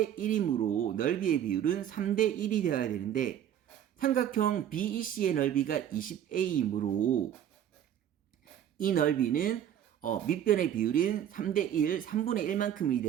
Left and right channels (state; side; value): quieter; left; 10.2 dB